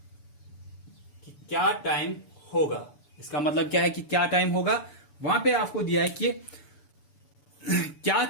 कि क्या टाइम होगा, इसका मतलब क्या है कि क्या टाइम होगा। वहां पे आपको दिया है कि क्या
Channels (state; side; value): late; right; 6.9 ms